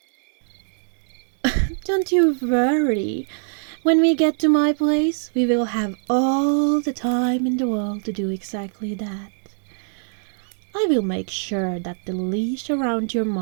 Don't you worry. When we get to my place, we will have all the time in the world to do exactly that. I will make sure that the leash around your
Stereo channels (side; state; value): left; silent; digital silence